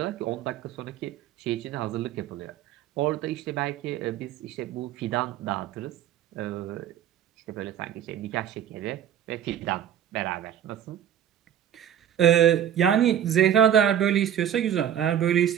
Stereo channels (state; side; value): quieter; left; 10.0 dB